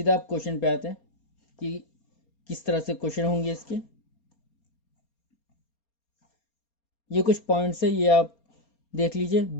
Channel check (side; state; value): right; late; 4.3 ms